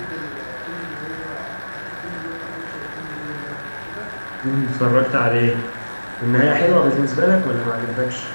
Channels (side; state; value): both; inverted; correlation -1.00